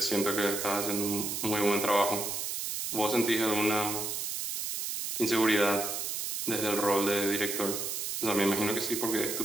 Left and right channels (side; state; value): right; noise; hiss, 3 dB below the sound